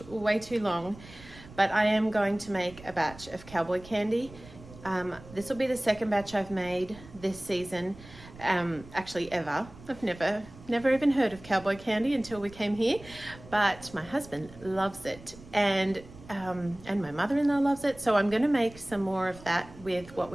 way too long, but I am going to make a batch of Cowboy candy. This will be the second batch I've made this season, actually ever. I've never even heard of Cowboy candy until we came here, but my husband loves it and my mother-in-law loves it, so I'm going to make some more of that with what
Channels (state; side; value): noise; right; rumble, 19 dB below the sound